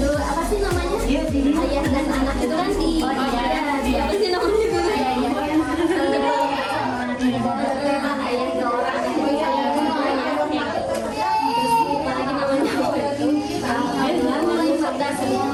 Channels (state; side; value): identical; both; correlation 1.00